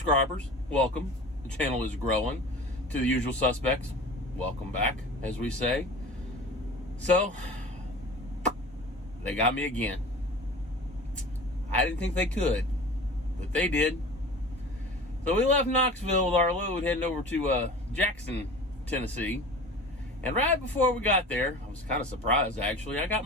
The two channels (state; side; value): normal; both; correlation 0.38